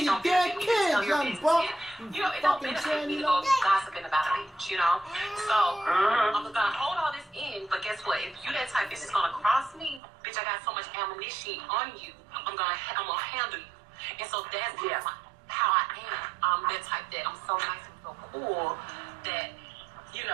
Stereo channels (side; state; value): left; drops out; at 10.0 s